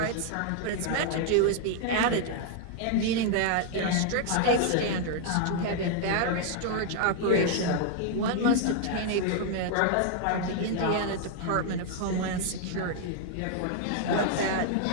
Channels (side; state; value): both; different; correlation 0.00